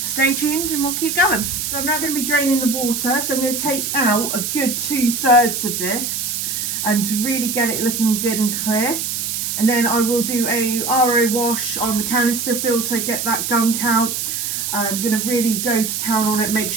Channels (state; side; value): noise; right; hiss, 2 dB below the sound